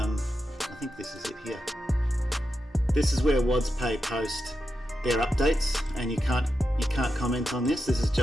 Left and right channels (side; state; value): both; normal; correlation 0.88